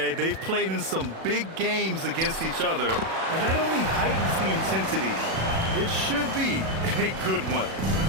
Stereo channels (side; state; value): left; late; 37 ms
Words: they've played in some big games against each other, and that only heightens the intensity. It should be a good one.